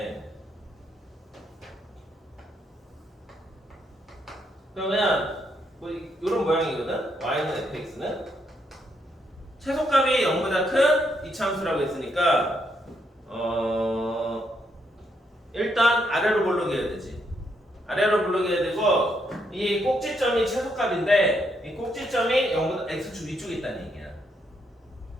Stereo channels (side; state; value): both; normal; correlation 0.76